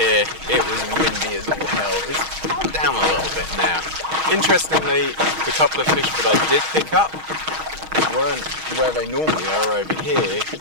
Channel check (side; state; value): left; late; 6.3 ms